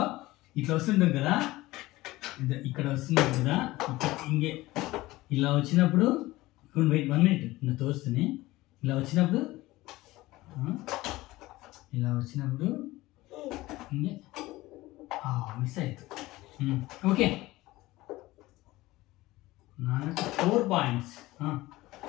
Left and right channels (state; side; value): quieter; right; 18.6 dB